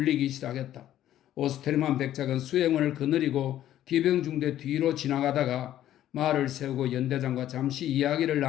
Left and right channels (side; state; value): right; quieter; 12.3 dB